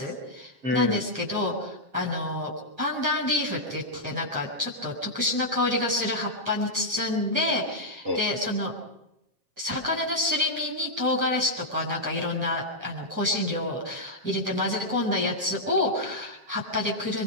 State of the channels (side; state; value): left; late; 7.4 ms